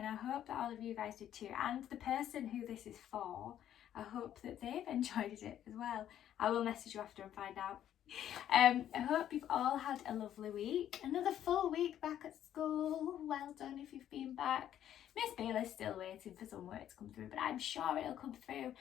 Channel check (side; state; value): right; quieter; 10.9 dB